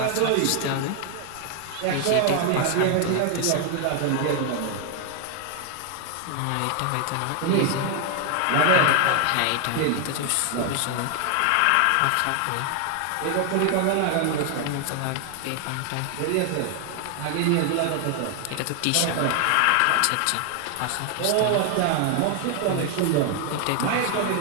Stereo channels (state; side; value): different; both; correlation 0.00